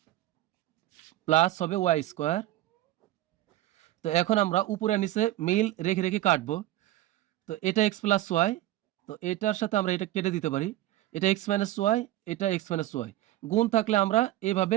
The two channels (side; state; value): left; quieter; 15.0 dB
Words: plus হবে ওয়াই স্কোয়ার। তো এখন আমরা উপরে নিচে মিল রেখে রেখে কাটবো। তো এটা এক্স প্লাস ওয়াই, তো এটার সাথে আমরা এটা কেটে দিতে পারি, এটা এক্স মাইনাস ওয়াই, এটা এক্স মাইনাস ওয়াই, গুণ থাকলে আমরা এভাবে